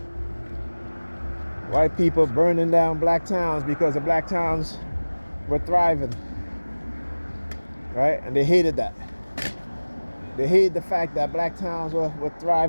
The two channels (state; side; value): inverted; both; correlation -1.00